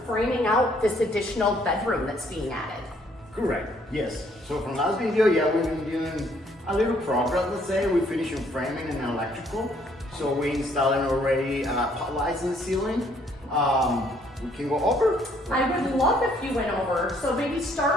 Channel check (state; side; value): normal; both; correlation 0.65